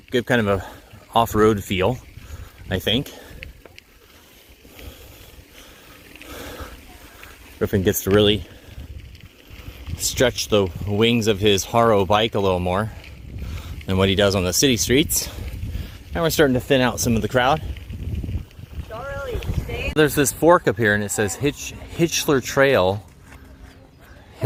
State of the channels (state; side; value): identical; both; correlation 1.00